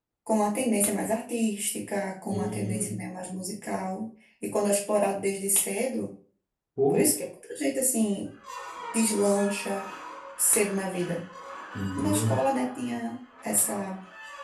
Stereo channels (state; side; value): identical; both; correlation 1.00